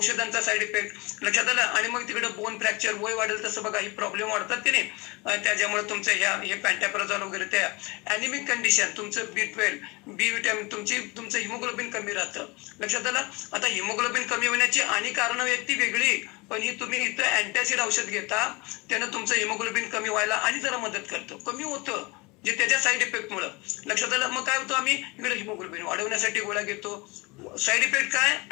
साईड इफेक्ट. लक्षात आलं. आणि मग तिकडे बोन फ्रॅक्चर, वय वाढेल तसं बघा ही प्रॉब्लेम वाढतात की नाही, त्याच्यामुळे तुमचं हे पॅन्टाप्रेझॉल वगैरे, त्या अॅनिमिक कंडिशन, तुमचं B12 बी विटॅमिन, तुमचं हिमोग्लोबिन कमी राहतं. लक्षात आलं. आता हिमोग्लोबिन कमी होण्याची आणि कारणं आहेत ती वेगळी, पण ही तुम्ही इथं अँटॅसिड औषध घेता त्यानं तुमचं हिमोग्लोबिन कमी व्हायला आणि जरा मदत करतं, कमी होतं जे त्याच्या साईड इफेक्ट मुळे. लक्षात आलं. मग काय होतं, आम्ही इकडे हिमोग्लोबिन वाढवण्यासाठी गोळ्या घेतो. साईड इफेक्ट काय,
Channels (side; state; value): right; quieter; 25.5 dB